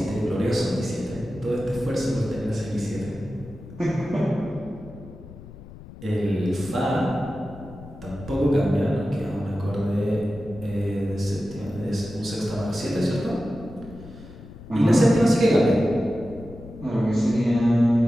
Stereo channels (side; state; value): left; noise; rumble, 16 dB below the sound